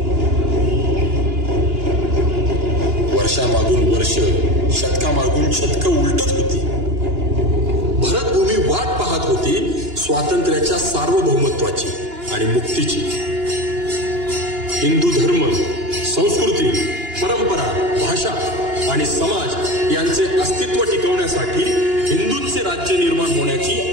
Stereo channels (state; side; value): late; left; 2.9 ms